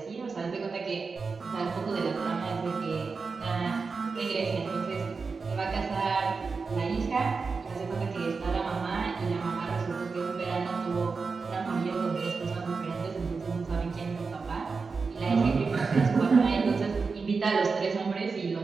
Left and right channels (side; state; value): left; quieter; 4.7 dB